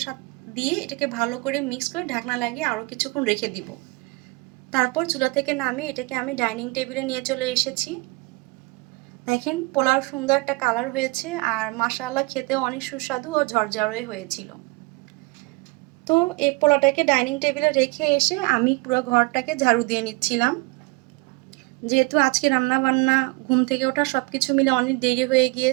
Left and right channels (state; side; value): quieter; left; 25.7 dB